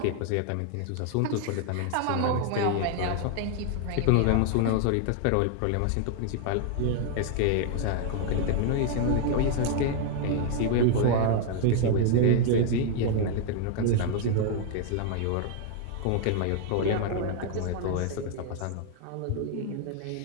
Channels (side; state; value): both; different; correlation 0.00